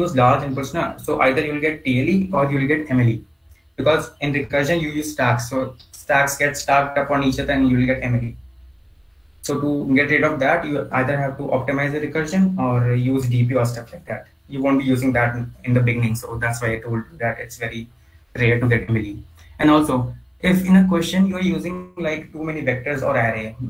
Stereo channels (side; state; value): both; identical; correlation 1.00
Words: large inputs now, so either you will get TLE or you will get MLE. Because in recursion you use stacks, so stacks get stacked up on each other and you will get MLE. So to get rid of that, you either have to optimize the recursion or use DP or stuff like that. You won't be using that in the beginning, so that's why I told you that it's very rare to get MLE. And also, if in a question you are using like too many vectors or array,